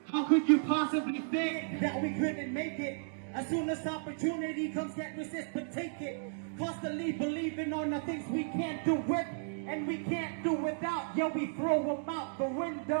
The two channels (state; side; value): silent; left; digital silence